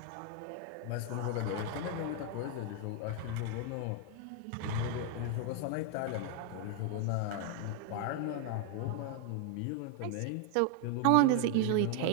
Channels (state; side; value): different; both; correlation 0.00